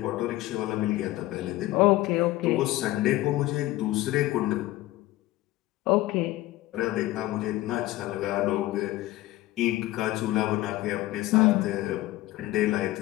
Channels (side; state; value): right; quieter; 17.0 dB